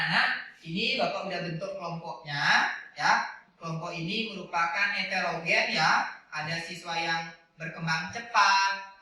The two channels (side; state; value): both; identical; correlation 1.00